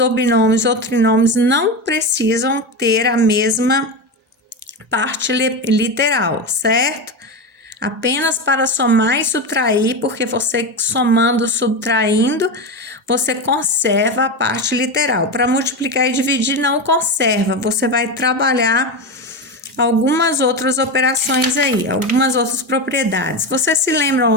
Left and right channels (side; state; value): both; normal; correlation 0.17